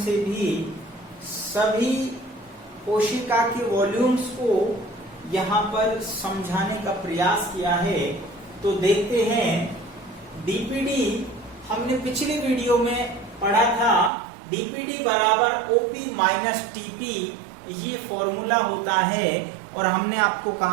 से भी सभी कोशिका के वॉल्यूम्स को यहाँ पर समझाने का प्रयास किया है। तो देखते हैं डीपीडी हमने पिछली वीडियो में पढ़ा था। डीपीडी बराबर ओपी माइनस टीपी ये फॉर्मूला होता है और हमने आपको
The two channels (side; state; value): left; drops out; at 14.1 s